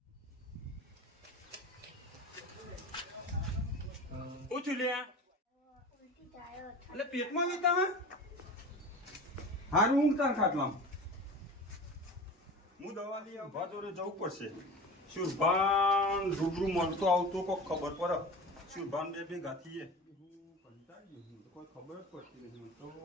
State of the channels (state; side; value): normal; both; correlation 0.33